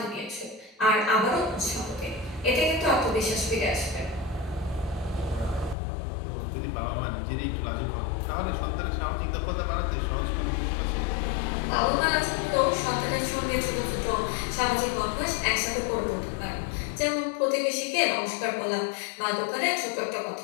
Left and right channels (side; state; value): right; drops out; at 5.8 s